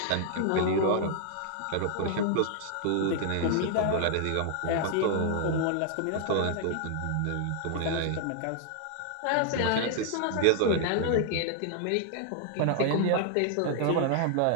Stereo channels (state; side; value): different; both; correlation 0.00